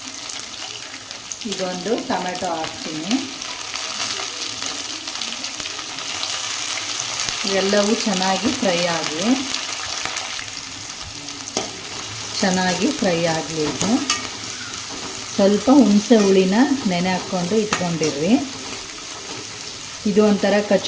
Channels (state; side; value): identical; both; correlation 1.00